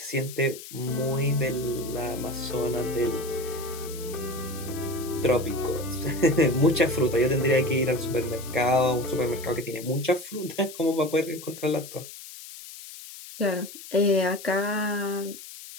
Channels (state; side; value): noise; left; hiss, 14 dB below the sound